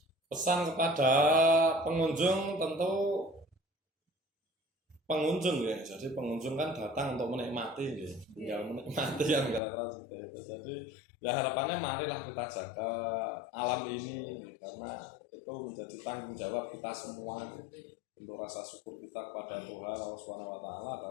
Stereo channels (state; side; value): drops out; right; at 9.6 s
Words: Pesan kepada pengunjung, tentu pengunjung ya. Jadi pengunjung kan datang untuk menikmati, ya. Tinggal menikmati yang kira-kira seperti itu. Jadi ya harapannya marilah kita jaga alam ini, ya. Karena itu menjadi tanggung jawab kita semua. Untuk rasa syukur kita kepada Tuhan Allah Subhanahu wa taala